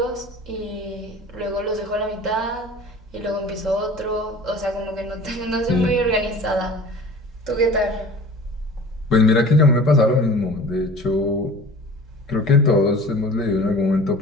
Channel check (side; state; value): both; normal; correlation 0.42